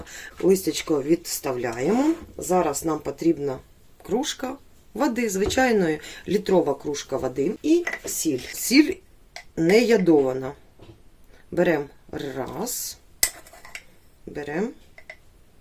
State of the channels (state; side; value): identical; both; correlation 1.00